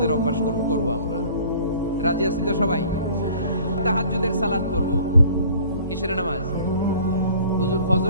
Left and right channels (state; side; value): inverted; both; correlation -0.49